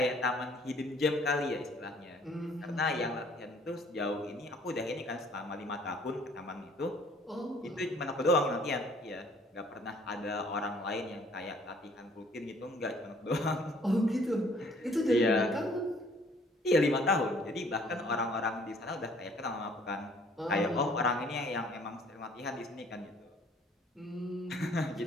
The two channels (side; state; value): both; normal; correlation 0.58